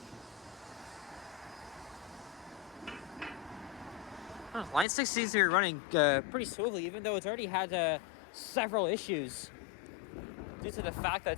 Line 6 seems to be running pretty smoothly, even though it's already had several issues due to the fact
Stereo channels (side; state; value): right; drops out; at 4.9 s